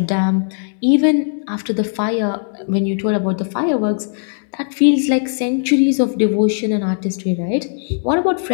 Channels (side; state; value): right; silent; 67 dB below the other